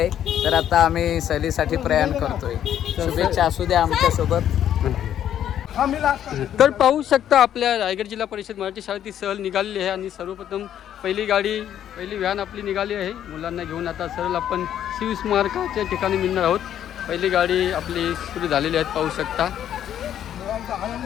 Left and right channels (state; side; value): quieter; right; 10.4 dB